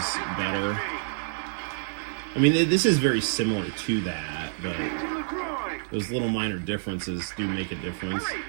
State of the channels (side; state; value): left; silent; digital silence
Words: better. I mean, this is very similar to that, but To the groin. those little minor differences do make a difference. Hurry,